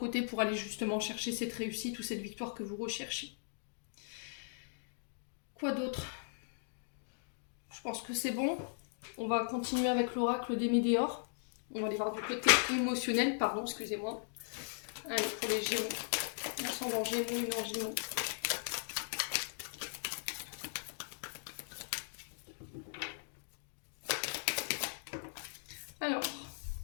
pour aller justement chercher cette réussite ou cette victoire que vous recherchez. Quoi d'autre? Je pense que c'est bon. On va continuer avec l'oracle des Météores. On va aller voir du côté émotionnel, pardon, excusez-moi. Allez, pour les Gémeaux. Ascendant Gémeaux, une en Gémeaux. Alors,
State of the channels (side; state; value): right; silent; digital silence